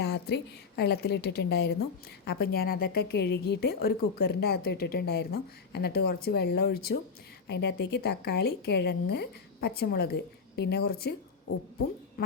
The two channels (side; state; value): right; quieter; 5.3 dB